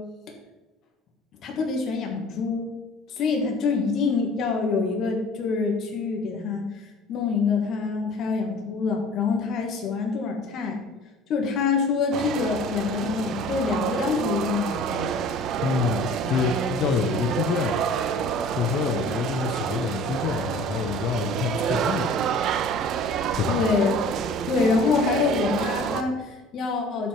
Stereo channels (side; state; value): both; normal; correlation 0.46